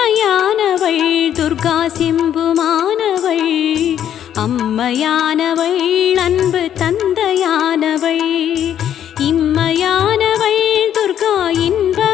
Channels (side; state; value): right; quieter; 10.1 dB